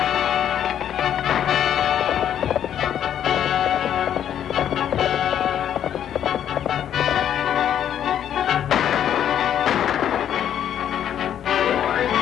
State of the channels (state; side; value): quieter; right; 9.9 dB